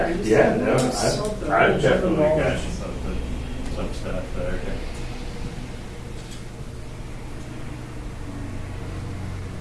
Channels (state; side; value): identical; both; correlation 1.00